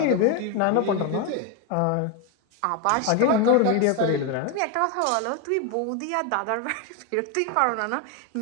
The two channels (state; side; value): different; both; correlation 0.02